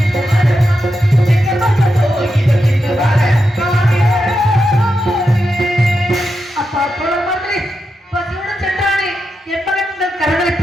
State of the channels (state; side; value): normal; both; correlation 0.87